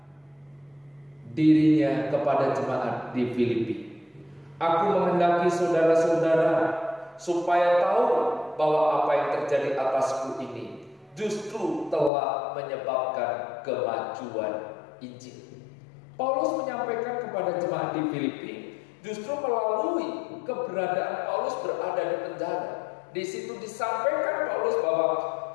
dirinya kepada jemaat di Filipi. Aku menghendaki saudara-saudara supaya tahu bahwa apa yang terjadi atasku ini justru telah menyebabkan kemajuan Injil. Paulus menyampaikan kepada jemaat di Filipi justru melalui keberadaan Paulus berada di penjara. Di situ disampaikan Paulus bahwa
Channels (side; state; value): right; drops out; at 12.1 s